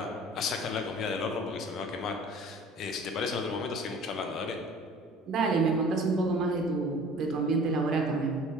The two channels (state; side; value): normal; both; correlation 0.47